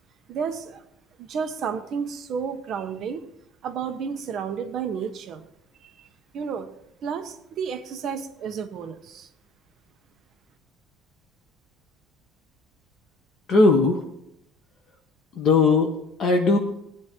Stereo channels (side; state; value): both; normal; correlation 0.50